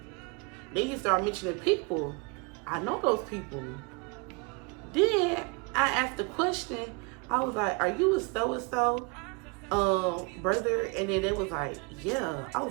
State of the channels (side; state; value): left; quieter; 31.2 dB